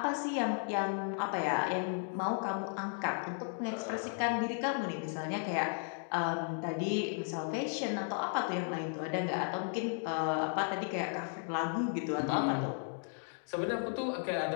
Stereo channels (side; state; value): right; silent; 54 dB below the other